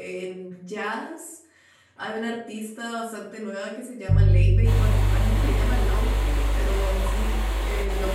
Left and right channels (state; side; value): identical; both; correlation 1.00